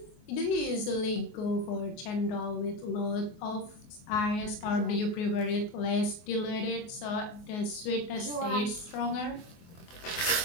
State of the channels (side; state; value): right; late; 24 ms